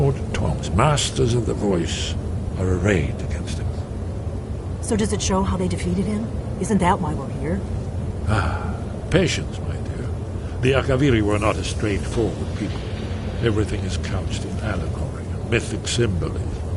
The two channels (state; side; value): identical; both; correlation 1.00